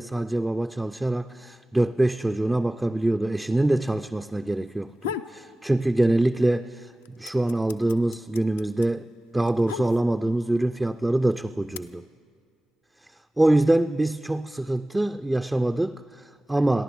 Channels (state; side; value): normal; both; correlation 0.98